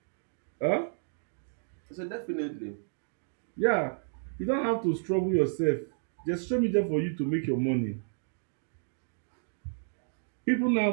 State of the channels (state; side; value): silent; left; digital silence